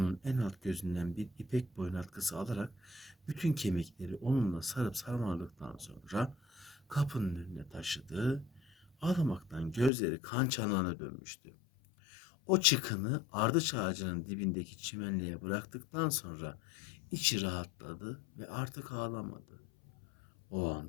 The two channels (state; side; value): drops out; right; at 9.9 s